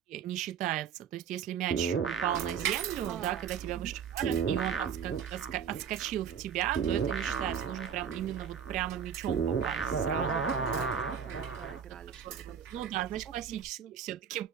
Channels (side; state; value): left; quieter; 7.7 dB